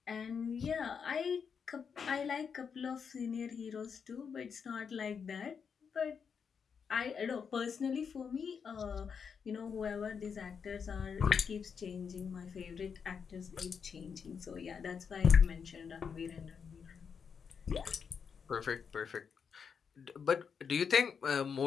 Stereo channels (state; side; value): quieter; right; 6.4 dB